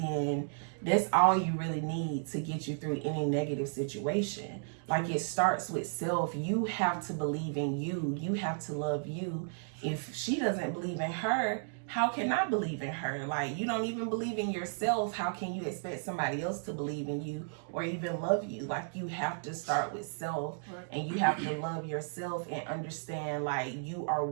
that's all you really need to get you through any negative situation. Like, it starts with self. You have to believe in you. You have to love you. If she doesn't believe in her, how can I believe in her? Like, you don't even believe in yourself. How can you expect somebody else to believe in you or even love you? Like, you have to start with self, and you have to love yourself and understand, like, you are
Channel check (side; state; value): left; silent; digital silence